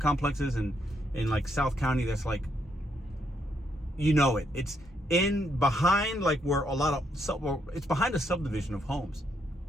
complexes in like South County that's like, you know it. It's behind like where it's behind a subdivision of homes.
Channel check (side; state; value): both; normal; correlation 0.76